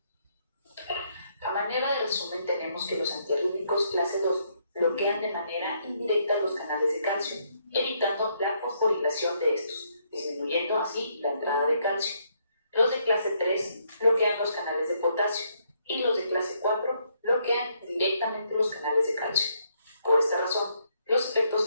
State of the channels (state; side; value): inverted; both; correlation -0.73